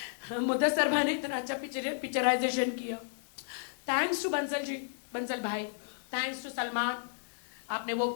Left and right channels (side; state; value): right; silent; digital silence